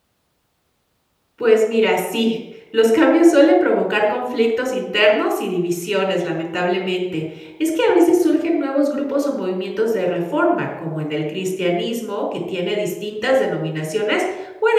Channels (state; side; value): identical; both; correlation 1.00